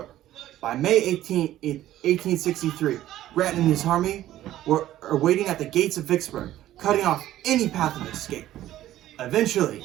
By May 18, 1863, Grant and his army were waiting at the gates of Vicksburg, cutting off any path of escape. Eventually,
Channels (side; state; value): left; quieter; 13.7 dB